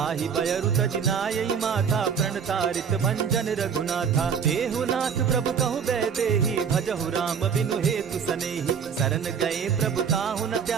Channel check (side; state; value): left; quieter; 6.9 dB